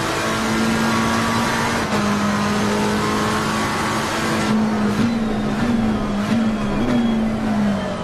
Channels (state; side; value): identical; both; correlation 1.00